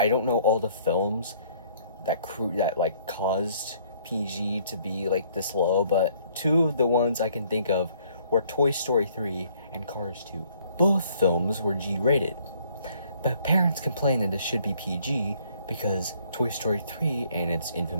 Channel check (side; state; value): both; inverted; correlation -0.62